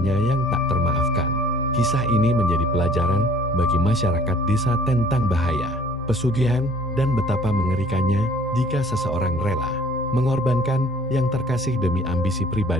yang tak termaafkan. Kisah ini menjadi pelajaran bagi masyarakat desa tentang bahaya pesugihan dan betapa mengerikannya jika seseorang rela mengorbankan yang terkasih demi ambisi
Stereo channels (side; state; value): both; normal; correlation 0.52